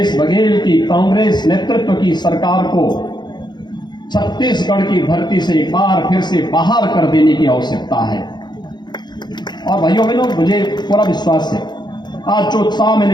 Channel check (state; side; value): late; right; 0.21 ms